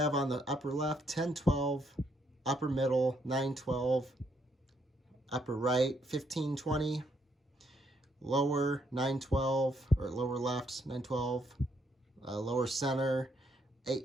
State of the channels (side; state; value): both; normal; correlation 0.73